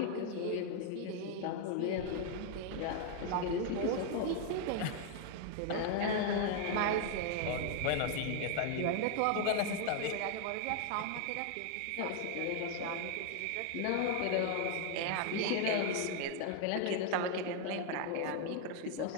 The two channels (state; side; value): different; both; correlation 0.00